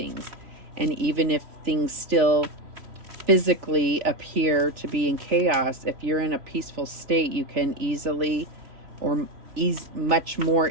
And even if things still physically appear to be in chaos, if you're in a peaceful state, you can easily or much more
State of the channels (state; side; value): late; left; 3.4 ms